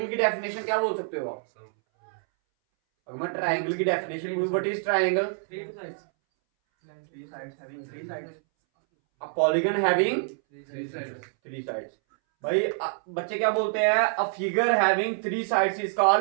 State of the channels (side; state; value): left; silent; 60 dB below the other